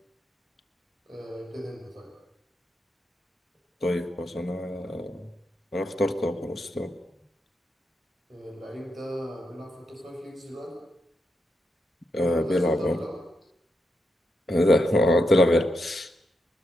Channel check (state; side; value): normal; both; correlation 0.84